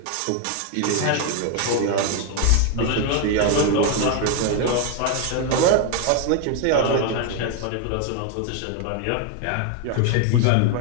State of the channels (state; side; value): different; both; correlation 0.01